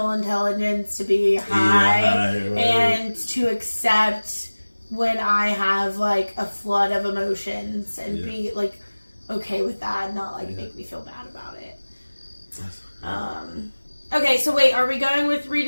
intelligence to be high, right. And to accept when I have like a flood of emotions and be like okay with that, and not like make me feel bad about it. Okay, so wait, are we going with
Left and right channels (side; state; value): both; inverted; correlation -1.00